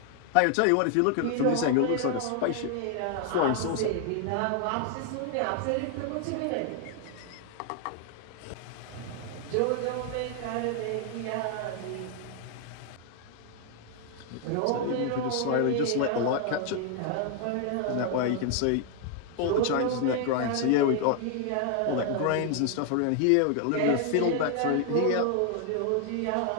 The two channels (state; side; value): different; both; correlation 0.00